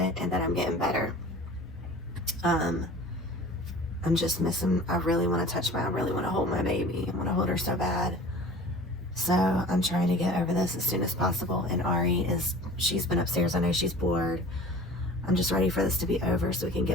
and that I'm getting better. I'm just missing, I really want to I really want to hold my baby. I want to hold her so bad. So I'm trying to get over this as soon as possible. And Ari she's been upstairs. I know she's bored. I'm just ready for this to be over so we can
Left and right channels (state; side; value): normal; both; correlation 0.42